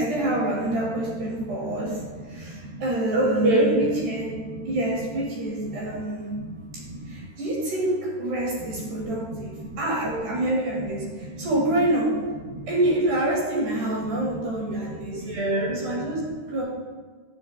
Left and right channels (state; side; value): late; left; 13 ms